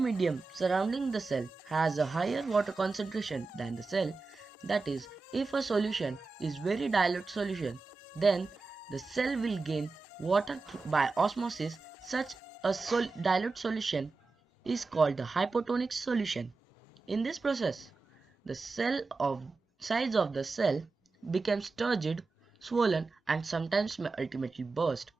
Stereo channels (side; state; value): left; quieter; 4.0 dB